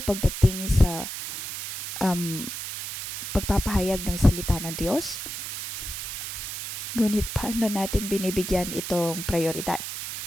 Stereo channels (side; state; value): right; noise; hiss, 7 dB below the sound